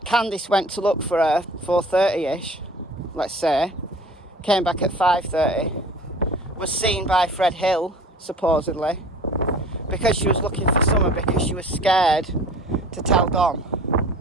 Candice went to look for her 4:30ish, let's say, came back at 5:30, was seen by Fred Hill, supposedly, because she was looking for Summer, because she was scared to tell Don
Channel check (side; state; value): both; normal; correlation 0.45